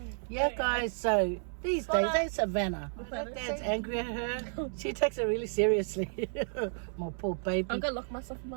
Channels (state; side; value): silent; left; 56 dB below the other